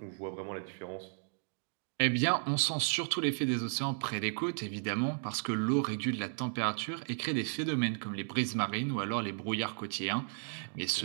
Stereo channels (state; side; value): silent; left; digital silence